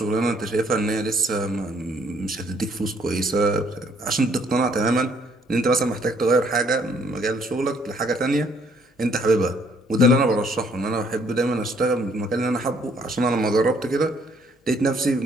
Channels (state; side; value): normal; both; correlation 0.65